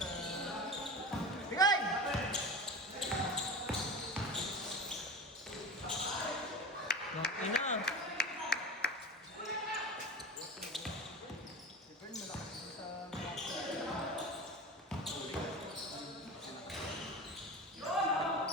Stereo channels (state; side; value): normal; both; correlation 0.29